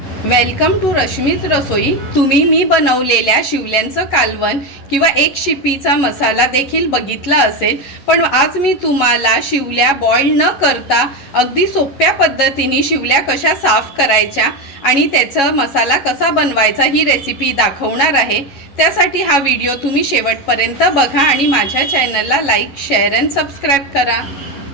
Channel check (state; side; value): late; right; 11 ms